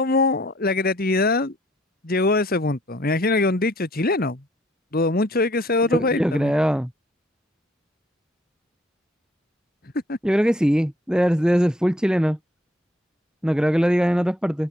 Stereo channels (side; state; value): both; normal; correlation 0.63